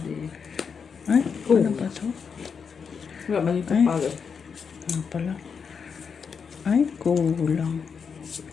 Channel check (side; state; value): right; quieter; 6.1 dB